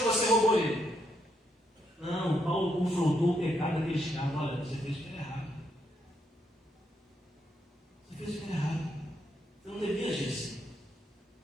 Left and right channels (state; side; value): normal; both; correlation 0.78